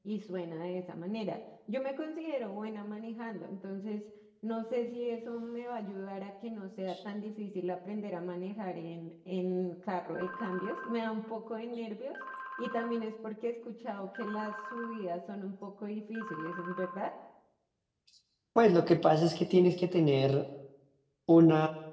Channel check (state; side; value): identical; both; correlation 1.00